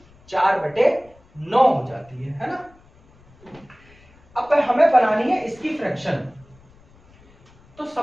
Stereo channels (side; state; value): left; noise; rumble, 29 dB below the sound